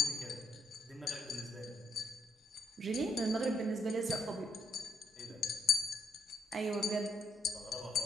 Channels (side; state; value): both; normal; correlation 0.77